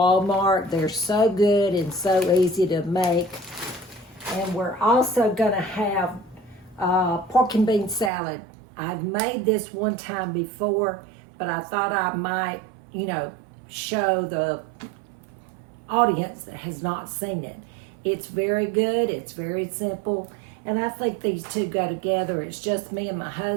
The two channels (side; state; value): left; drops out; at 8.1 s